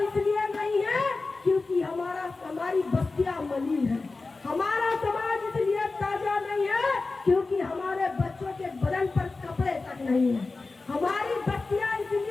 नहीं है क्योंकि हमारी बस्तियां मलिन है। हमारा समाज इसलिए ताजा नहीं है क्योंकि हमारे बच्चों के बदन पर कपड़े तक नहीं है। हमारी बस्तियां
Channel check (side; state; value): right; quieter; 3.7 dB